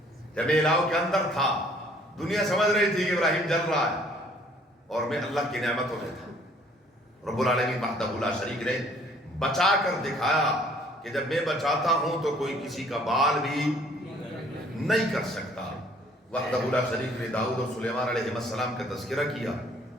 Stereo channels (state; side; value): normal; both; correlation 0.59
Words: جب الہو کے اندر تھا، دنیا سمجھ رہی تھی کہ ابراہیم جل رہا ہے، اور میں اللہ کی نعمتوں میں تھا۔ رب العالمین وحدہ لا شریک نے بچا کر دکھایا کہ جب میں بچاتا ہوں تو کوئی کسی کا بال بھی نہیں کر سکتا۔ وحدہ لا شریک نے داؤد اور سلیمان علیہ السلام کا تذکرہ کیا۔